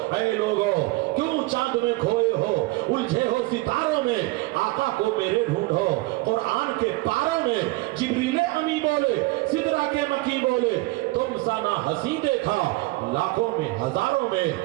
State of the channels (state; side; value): quieter; left; 21.3 dB